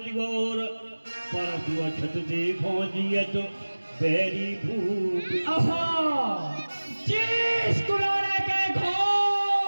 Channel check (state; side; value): inverted; both; correlation -1.00